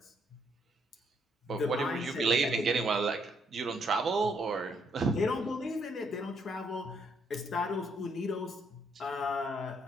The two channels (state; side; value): normal; both; correlation 0.72